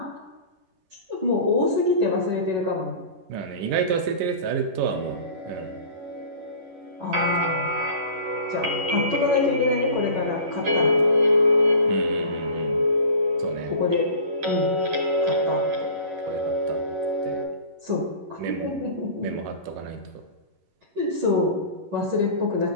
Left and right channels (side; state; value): left; late; 11 ms